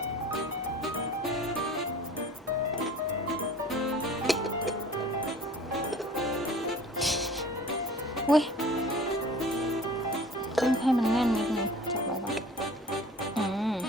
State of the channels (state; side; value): normal; both; correlation 0.45